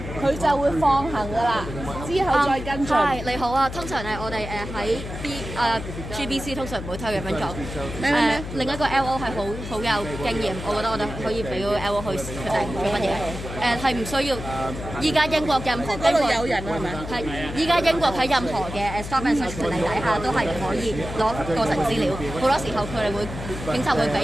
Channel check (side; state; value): left; noise; hum, 8 dB below the sound